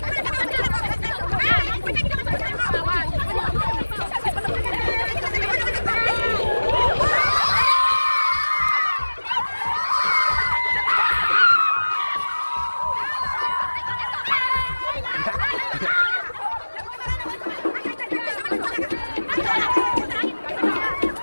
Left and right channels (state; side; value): inverted; both; correlation -1.00